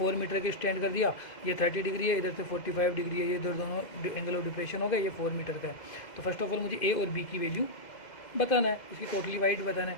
मीटर के स्टैंड कर दिया, ये 30 डिग्री है, इधर से 45 डिग्री है, ये इधर दोनों एंगल ऑफ डिप्रेशन हो गए, ये 4 मीटर का है। तो फर्स्ट ऑफ ऑल मुझे ए और बी की वैल्यू बताना है, इसकी टोटली वाइड बताना है।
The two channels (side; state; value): right; late; 2.0 ms